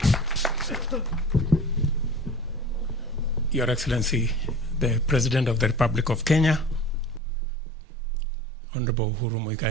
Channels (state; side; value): drops out; left; at 7.2 s